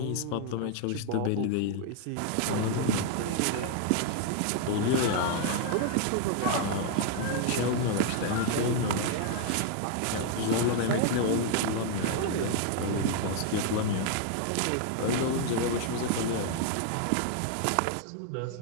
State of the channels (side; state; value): both; different; correlation 0.00